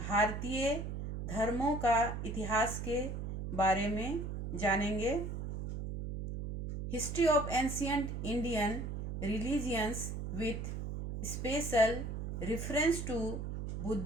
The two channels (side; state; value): right; noise; hum, 4 dB below the sound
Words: धर्मों का इतिहास के बारे में जानेंगे। History of ancient Indian religions with special reference to